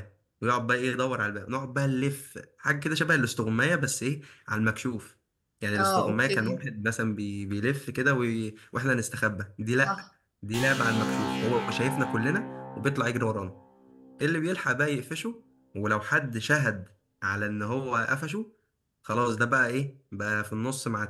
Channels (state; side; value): identical; both; correlation 1.00